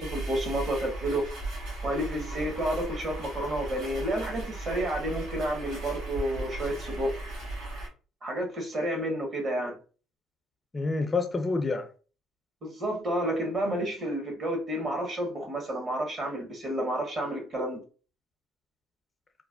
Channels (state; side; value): normal; both; correlation 0.68